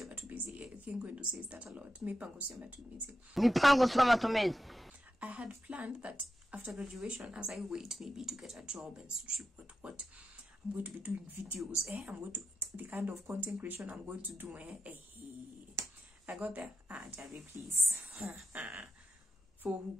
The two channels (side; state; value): both; normal; correlation 0.89